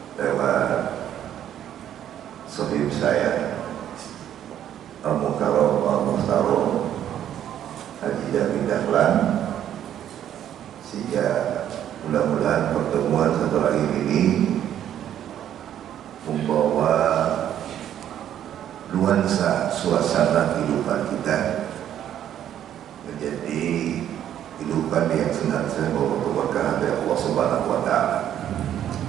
lewat sahib saya Al-Mukarram Al-Muhtaram Haji Jamil Dahlan, sehingga mudah-mudahan pertemuan satu hari ini membawa nuansa suasana kehidupan kita menjadi kehidupan yang senantiasa membawa keberkahan dari Allah Subhanahu wa Ta'ala.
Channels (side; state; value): left; quieter; 10.6 dB